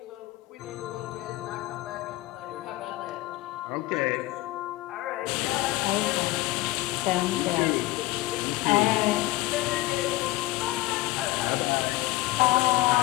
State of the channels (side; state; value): right; quieter; 18.5 dB